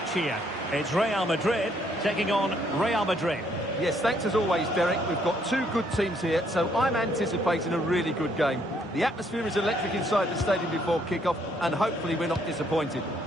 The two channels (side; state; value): both; normal; correlation 0.69